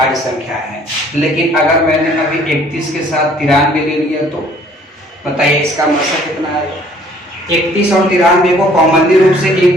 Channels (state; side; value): normal; both; correlation 0.58